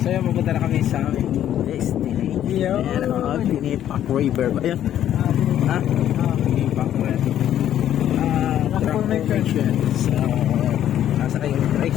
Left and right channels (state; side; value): quieter; right; 11.1 dB